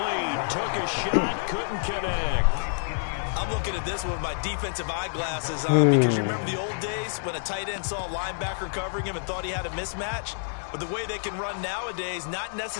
Took a shot, couldn't connect. I'm looking at this with my defensive eyeglasses on because you remember the old days when a tight end saw a linebacker covering him and thought he had a mismatch? But the way they can run nowadays, not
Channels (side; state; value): right; silent; digital silence